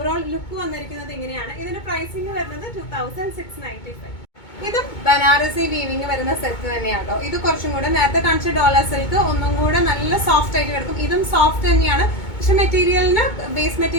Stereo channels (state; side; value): late; right; 2.2 ms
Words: ലുക്ക് വന്നിരിക്കുന്നത്. ഇങ്ങനെയാണ് ഇതിന്റെ പ്രൈസിങ് വരുന്നത് 2695. ഇതും ബനാറസി വീവിങ് വരുന്ന സെറ്റ് തന്നെയാണോ. ഇത് കുറച്ചും കൂടെ നേരത്തെ കാണിച്ച ഡോളർ സിൽക്ക് ഒന്നും കൂടെ നല്ല സോഫ്റ്റ് ആയിട്ട് കിടക്കും. ഇതും സോഫ്റ്റ് തന്നെയാണ്, പക്ഷെ മെറ്റീരിയലിന് ബേസ്